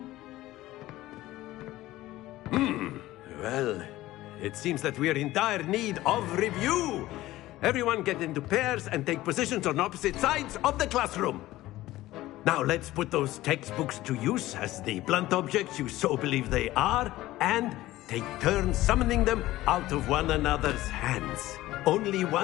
Well, it seems that we are in dire need of review. Everyone get into pairs and take positions on opposite sides of the classroom. Now let's put those textbooks to use as the blunt objects you so believe they are, and take turns summoning them out of one another's hands. Only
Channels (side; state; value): right; quieter; 16.5 dB